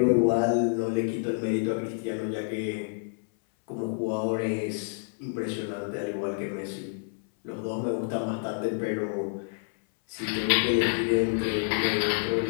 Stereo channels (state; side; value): silent; right; 59 dB below the other